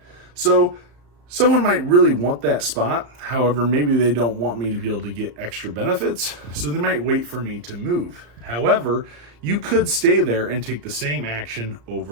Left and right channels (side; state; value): left; late; 34 ms